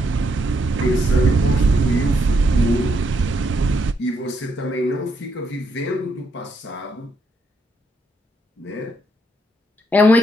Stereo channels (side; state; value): both; normal; correlation 0.76